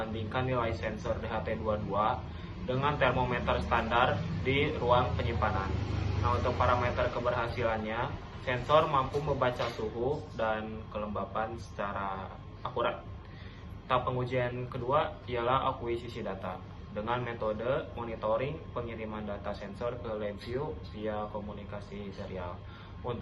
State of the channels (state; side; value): identical; both; correlation 1.00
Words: nilai sensor DHT22 dengan termometer standar di ruang penyimpanan. Nah, untuk parameter keberhasilannya, sensor mampu membaca suhu dan kelembapan secara akurat. Tahap pengujian kedua ialah akuisisi data dengan metode monitoring pengiriman data sensor ke LabVIEW via komunikasi serial.